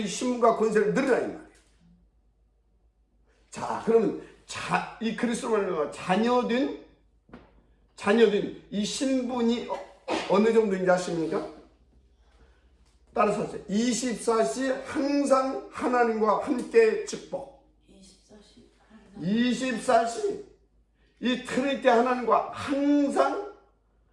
신분과 권세를 누리라 이 말이에요. 자, 그러면 이 그리스도로 자녀된 이 신분이 어느 정도인지 아십니까? 따라서 하세요. 24시 항상 하나님과 함께 축복. 24시 이 트리니티 하나님과 항상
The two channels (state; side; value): identical; both; correlation 1.00